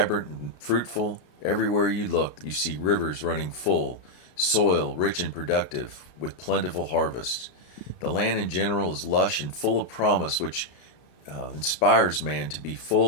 and fruitful. Everywhere you look, you see rivers running full, soil rich and productive, with plentiful harvests. The land in general is lush and full of promise, which inspires man to be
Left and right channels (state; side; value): late; right; 33 ms